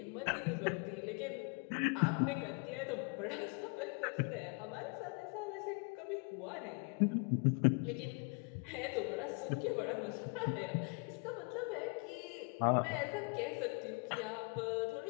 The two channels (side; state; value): right; quieter; 33.5 dB